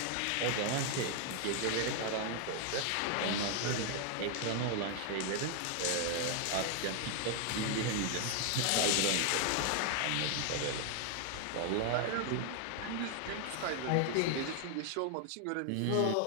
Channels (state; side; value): different; both; correlation 0.00